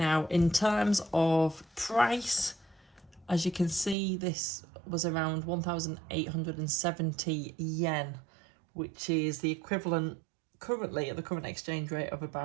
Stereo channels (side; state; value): left; drops out; at 4.0 s